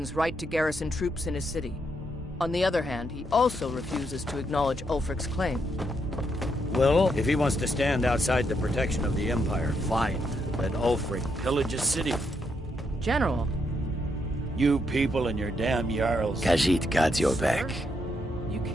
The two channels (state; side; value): normal; both; correlation 0.78